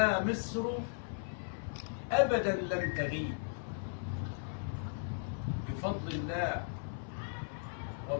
مصر أبدا لن تغيب، بفضل الله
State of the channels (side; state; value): right; silent; 53 dB below the other